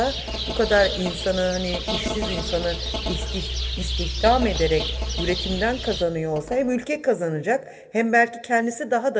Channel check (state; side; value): identical; both; correlation 1.00